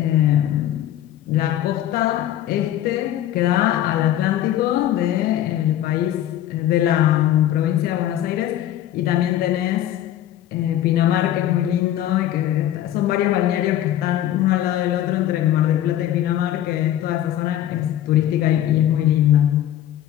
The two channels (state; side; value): quieter; right; 12.2 dB